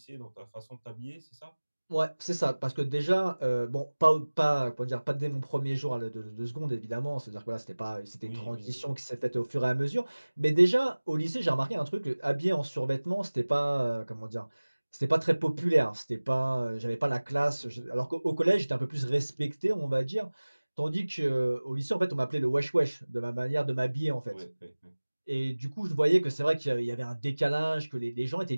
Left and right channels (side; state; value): both; inverted; correlation -1.00